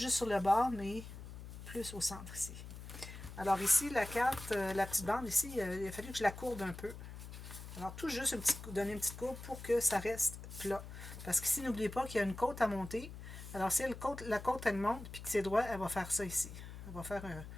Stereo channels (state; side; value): noise; left; hum, 12 dB below the sound